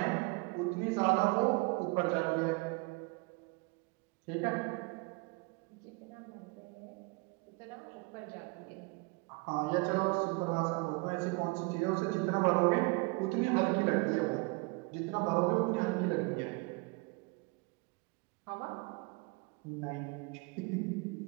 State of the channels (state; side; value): quieter; left; 28.4 dB